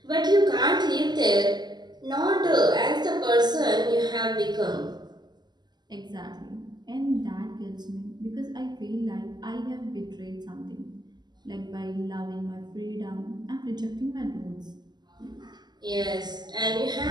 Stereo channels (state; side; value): late; left; 0.21 ms